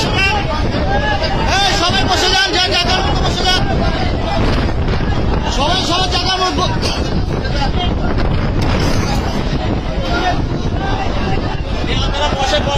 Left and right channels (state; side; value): identical; both; correlation 1.00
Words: যান, সবাই বসে যান, যে জায়গার মতো বসে যান, সবাই সবার জায়গার মতো। বসে